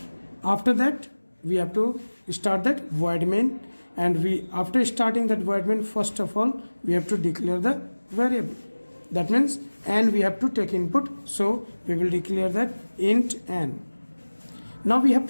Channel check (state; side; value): inverted; both; correlation -1.00